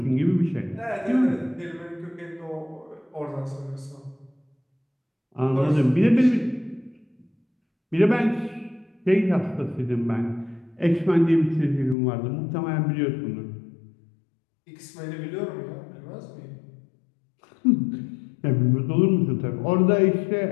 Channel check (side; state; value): right; drops out; at 12.0 s